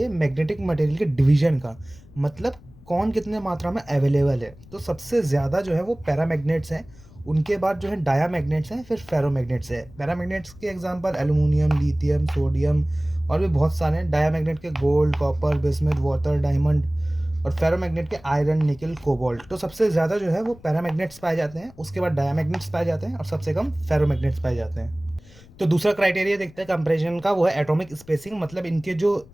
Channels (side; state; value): left; noise; rumble, 23 dB below the sound